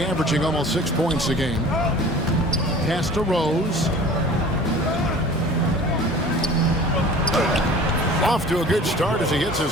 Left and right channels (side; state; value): both; normal; correlation 0.44